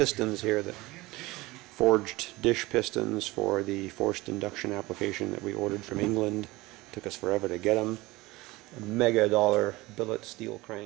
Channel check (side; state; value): left; quieter; 20.6 dB